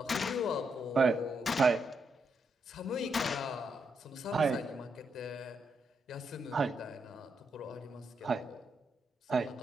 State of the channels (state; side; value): normal; both; correlation 0.80